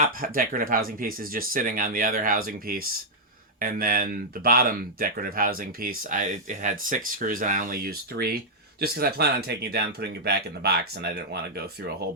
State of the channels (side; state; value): both; normal; correlation -0.05